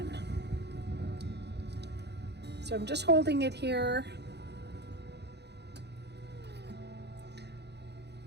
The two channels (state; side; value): late; left; 0.49 ms